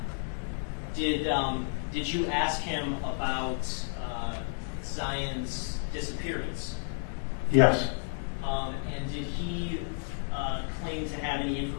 did you ask him about Zion's disappearance? Yes. And did he claim to have any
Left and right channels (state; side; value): silent; right; 57 dB below the other